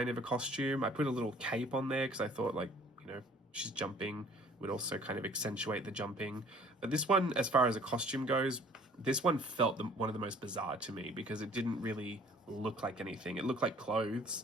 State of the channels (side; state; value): both; normal; correlation 0.55